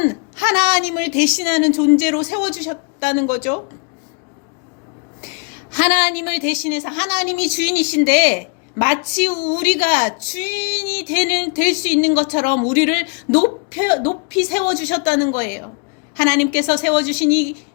하나님을 대신하는 존재로 세워주셨다는 거죠. 하나님을 대신해서, 하나님이 주인이신데 마치 우리가 주인이 될 수 있는 것처럼 우리를 높이 세워주셨다는 거예요. 하나님께서 세워주신 이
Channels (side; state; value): right; quieter; 35.4 dB